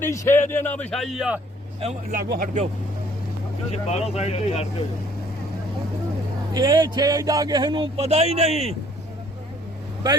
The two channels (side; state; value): both; normal; correlation 0.59